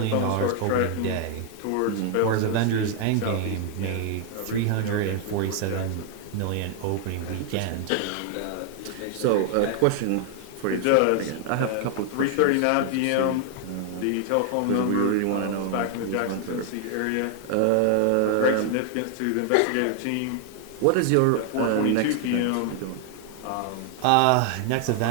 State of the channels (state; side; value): different; both; correlation 0.00